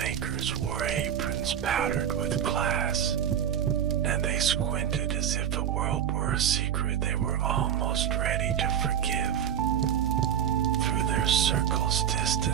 wore aprons powdered with glass, and they squinted as if the world were a secret they were almost ready to forgive. Through their circles,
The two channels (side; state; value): left; quieter; 9.3 dB